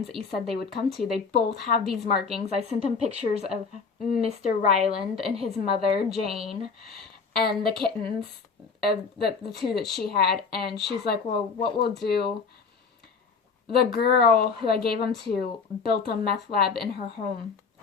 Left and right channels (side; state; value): right; quieter; 5.2 dB